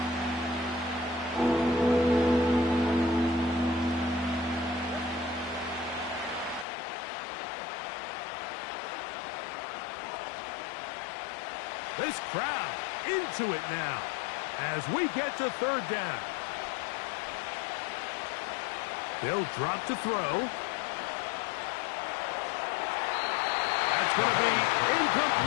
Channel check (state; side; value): drops out; right; at 6.7 s